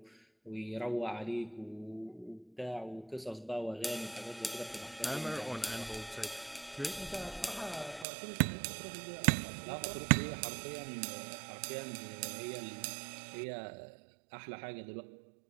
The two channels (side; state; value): left; drops out; at 8.1 s